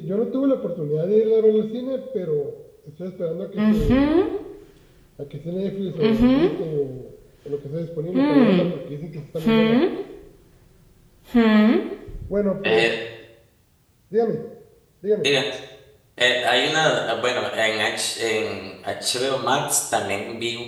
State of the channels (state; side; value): identical; both; correlation 1.00